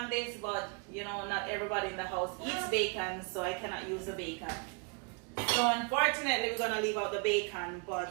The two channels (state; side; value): quieter; left; 36.2 dB